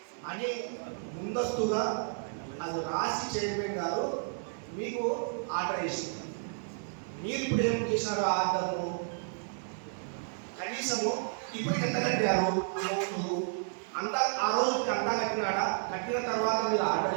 అని ముందస్తుగా అది రాసి చైర్మన్ గారు మీకు ఆర్డర్ ఇస్తుంది. మీరు ఇప్పుడు ఏం చేసినారు, ఆర్డర్ను కనీసము ఇప్పుడు ఎంత కట్టారు అంత, ఆ రోజుకి అంతా కట్టినాడా, కట్టిన తర్వాత మీరు ఆర్డర్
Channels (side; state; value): left; silent; 56 dB below the other